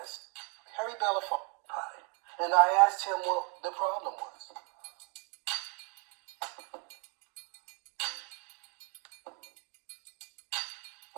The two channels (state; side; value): quieter; left; 36.2 dB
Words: Harry Belafonte. And I asked him what the problem was.